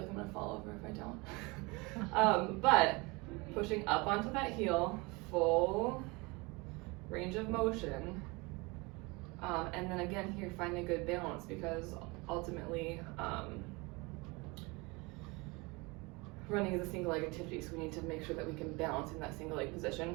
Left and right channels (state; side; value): quieter; left; 26.1 dB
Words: I'm gonna fall over if I don't. But pushing up onto that heel, full range of motion. And then again here, finding a good balance, because ultimately running is a single leg activity, so we need to make sure that we can balance in that single leg